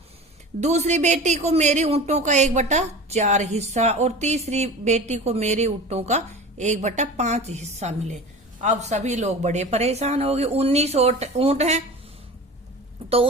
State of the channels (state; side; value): normal; both; correlation 0.35